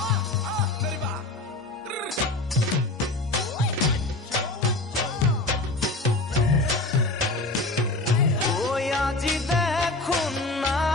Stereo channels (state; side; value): quieter; right; 3.1 dB